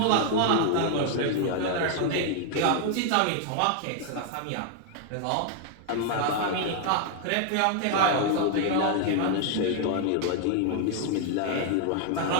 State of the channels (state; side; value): different; both; correlation 0.00